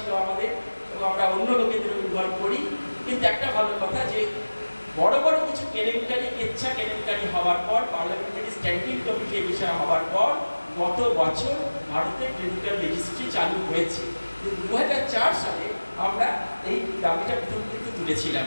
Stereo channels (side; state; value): both; inverted; correlation -1.00